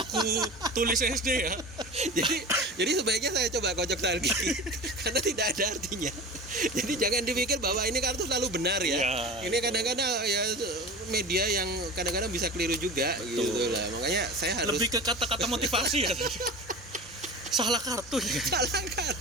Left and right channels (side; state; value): both; normal; correlation 0.33